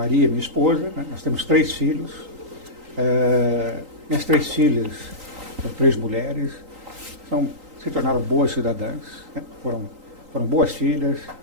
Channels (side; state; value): left; late; 3.8 ms